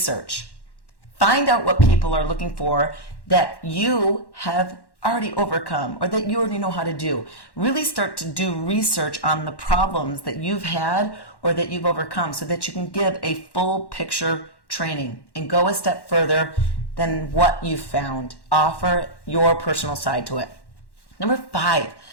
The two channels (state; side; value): late; right; 1.1 ms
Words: Find out what people are looking for that you have already overcome, or that you already know how to do. Really start to do research on the problems that you've had or that you've overcome, so that you can give a full picture training and go a step further than what you found. Offer your personal side to it. Number 5,